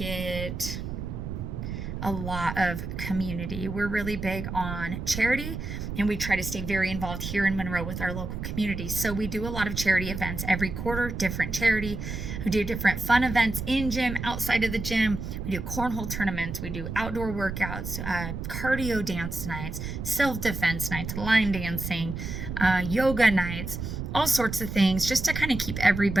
a lot of community. We're really big on charity, and we try to stay very involved here in Monroe with our local community. So we do a lot of charity events every quarter, different charity. We do different fun events in gym, outside of the gym. We do cornhole tournaments. We do outdoor workouts, cardio dance nights, self-defense nights, line dancing, yoga nights, all sorts of things, just to kind of keep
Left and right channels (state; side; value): noise; right; rumble, 6 dB below the sound